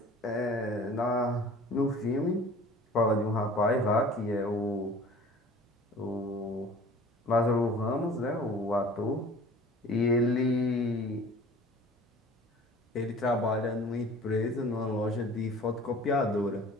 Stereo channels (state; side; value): normal; both; correlation 0.46